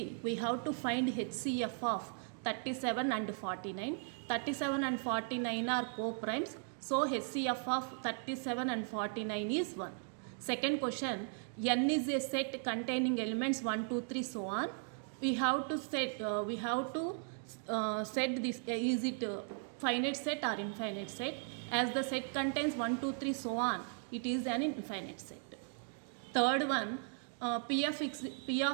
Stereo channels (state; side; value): silent; left; 53 dB below the other